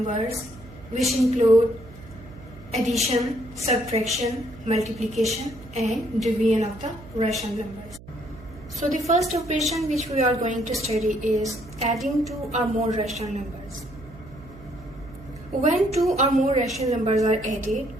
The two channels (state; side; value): noise; right; hum, 19 dB below the sound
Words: which include addition, subtraction, multiplication and division of the rational numbers. So the first operation which we are going to study is adding two or more rational numbers. When two or more rational numbers are added,